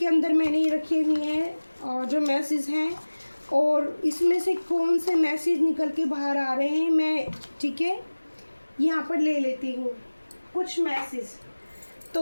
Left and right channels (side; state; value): both; inverted; correlation -1.00